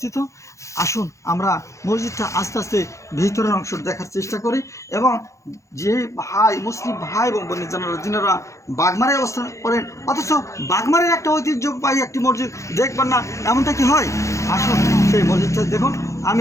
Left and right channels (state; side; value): late; right; 0.15 ms